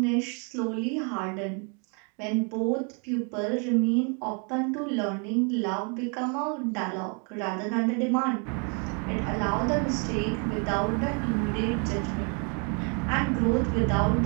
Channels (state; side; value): quieter; left; 37.1 dB